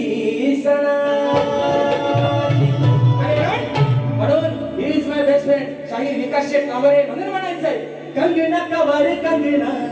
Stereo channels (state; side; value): identical; both; correlation 1.00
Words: सणाची. म्हणून he is my best friend शाहीर विकास शेठ कांबळे. म्हणून म्हणायचंय कंगना कवर कंगना